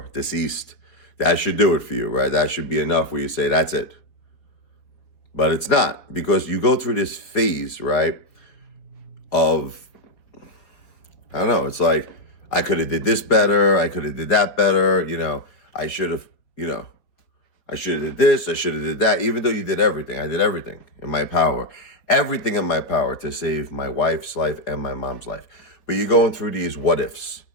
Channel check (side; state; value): right; late; 4.5 ms